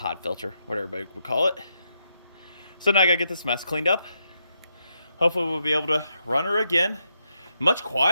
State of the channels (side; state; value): both; inverted; correlation -0.81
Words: filter, whatever everybody would call it. So now I gotta get this mess cleaned up. Hopefully we'll be able to run her again. Much